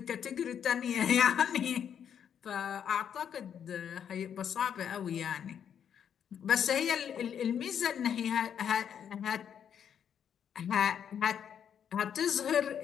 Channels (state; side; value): quieter; right; 8.5 dB